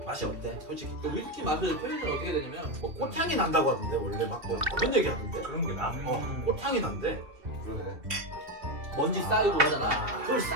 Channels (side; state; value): left; late; 2.7 ms